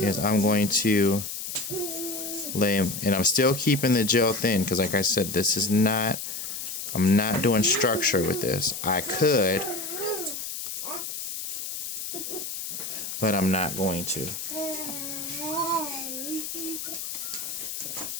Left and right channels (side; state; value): left; noise; hiss, 6 dB below the sound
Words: I'm going to lay, and I'm still keeping the gel thin because like I said, this is not, I'm not doing structure with this. I could, but I'm not going to.